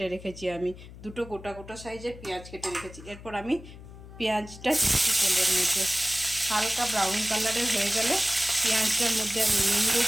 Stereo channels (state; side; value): noise; left; hum, 16 dB below the sound